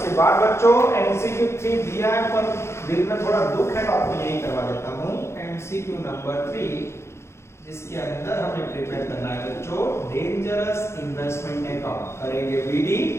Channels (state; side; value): late; right; 0.13 ms